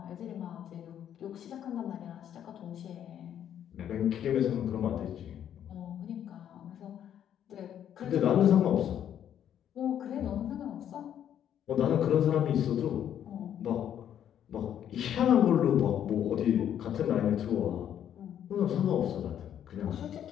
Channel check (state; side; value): quieter; right; 9.9 dB